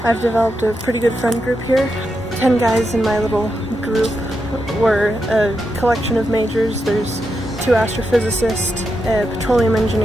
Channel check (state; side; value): normal; both; correlation 0.85